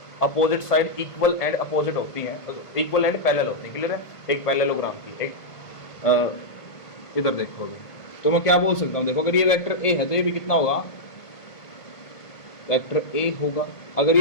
opposite side equal and opposite होती हैं, इक्वल एंड पैरेलल होती है, क्लियर है। एक पैरेललोग्राम की एक इधर देखो अभी, तो मैं क्या बोल सकता हूं, देखो अगर ये वेक्टर ए है तो ये भी कितना होगा, वेक्टर ए होगा। अगर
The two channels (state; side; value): late; right; 1.8 ms